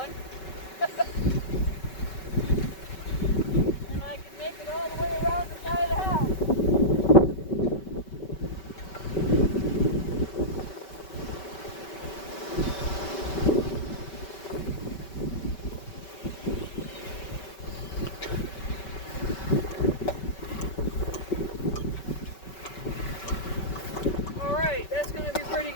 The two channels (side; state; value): right; late; 5.3 ms